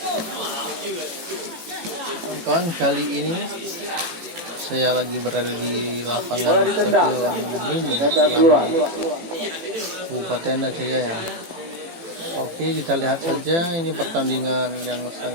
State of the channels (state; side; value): late; left; 18 ms